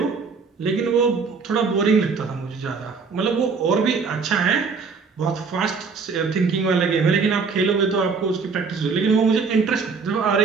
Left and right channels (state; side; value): quieter; left; 5.0 dB